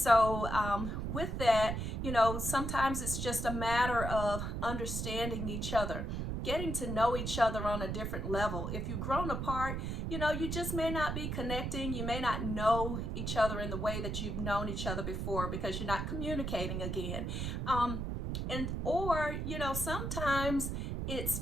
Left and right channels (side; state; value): right; noise; rumble, 3 dB below the sound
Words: with that, sometimes it's just a matter of understanding each other, getting to know each other on a different level. If you've grown apart, you just may not be connecting. You may not know each other in the way that you've known each other before because you're not communicating again. Or sometimes it's